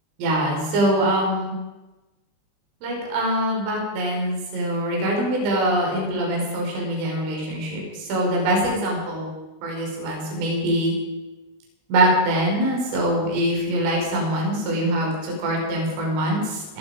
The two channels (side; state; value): left; late; 19 ms